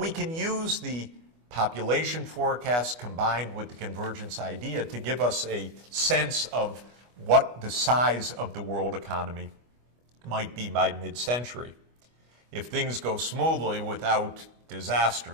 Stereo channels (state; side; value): late; left; 25 ms